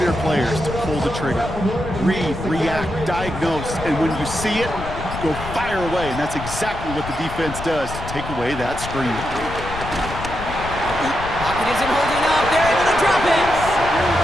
players to pull the trigger. Read, react, diagnose, and when you see it, go fire away. And that's exactly what the defense does to take away that screen. Pocket isn't holding up. They're able to drop it.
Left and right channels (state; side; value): noise; left; rumble, 9 dB below the sound